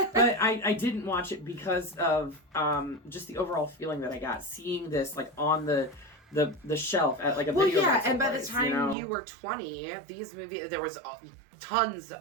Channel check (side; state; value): left; drops out; at 9.0 s